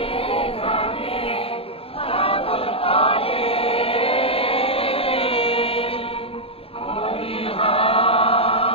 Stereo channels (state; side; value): late; right; 0.27 ms